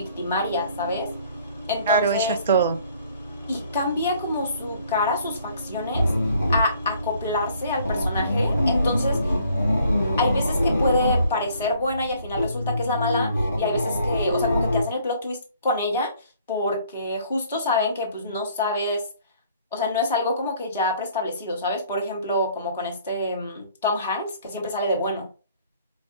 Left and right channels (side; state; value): both; inverted; correlation -0.60